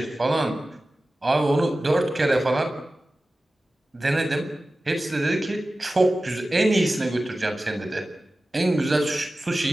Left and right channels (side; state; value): both; normal; correlation 0.95